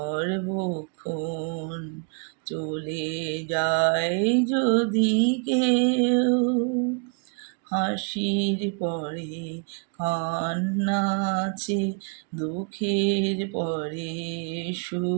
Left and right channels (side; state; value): left; quieter; 37.4 dB